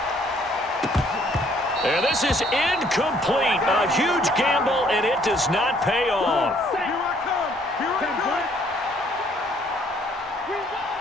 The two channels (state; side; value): normal; both; correlation 0.63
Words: And this is incomplete. A huge gamble, and it does not pay off.